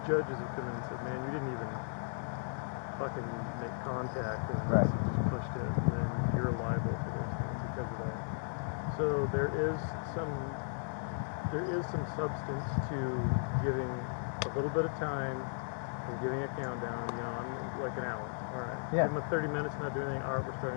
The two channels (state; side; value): silent; right; digital silence